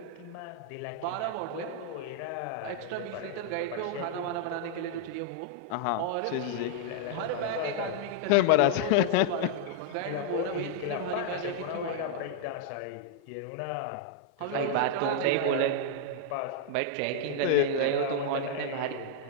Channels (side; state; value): both; different; correlation -0.01